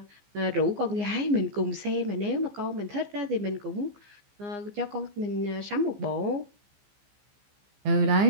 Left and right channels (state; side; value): late; left; 15 ms